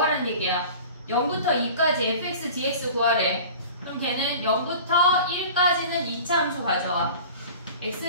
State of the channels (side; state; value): both; inverted; correlation -0.41